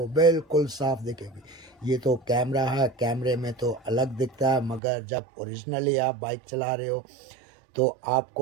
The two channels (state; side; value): drops out; left; at 4.8 s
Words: बिल्कुल साफ दिखेगी। ये तो कैमरा है, कैमरे में तो अलग दिखता है, मगर जब ओरिजिनली आप बाइक चला रहे हो तो